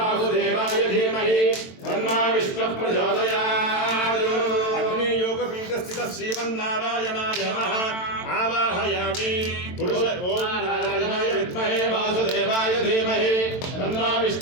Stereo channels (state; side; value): late; right; 22 ms